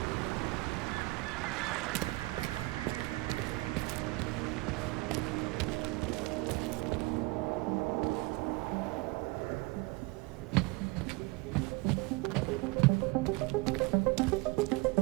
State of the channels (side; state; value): left; quieter; 24.4 dB